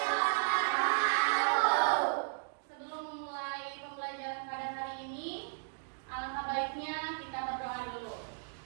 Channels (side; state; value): left; silent; digital silence